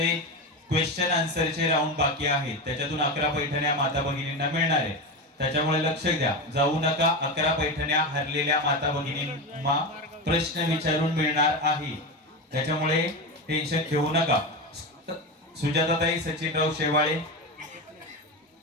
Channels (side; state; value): both; normal; correlation 0.19